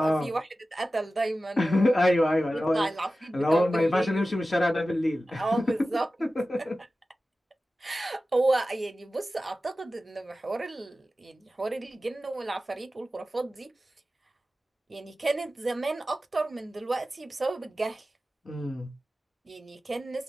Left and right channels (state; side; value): normal; both; correlation 0.95